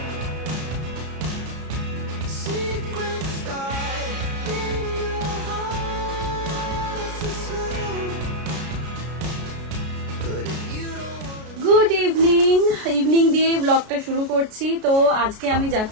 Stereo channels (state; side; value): late; left; 33 ms